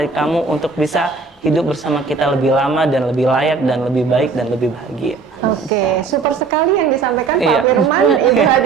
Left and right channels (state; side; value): quieter; left; 4.6 dB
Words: kamu untuk bisa hidup bersama kita lebih lama dan lebih layak dan lebih baik dan lebih bahagia. Oke, super sekali yang disampaikan Pak Iya. Firman, Ibu